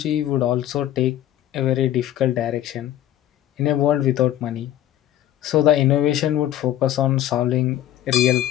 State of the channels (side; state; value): right; quieter; 12.5 dB